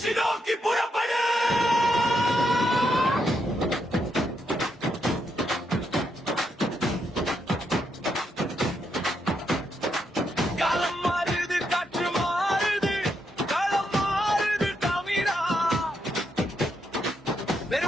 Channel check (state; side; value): normal; both; correlation 0.80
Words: நோக்கி புறப்படு. காலம் மாறுது, காற்று மாறுது, களம் மாறுது தமிழா.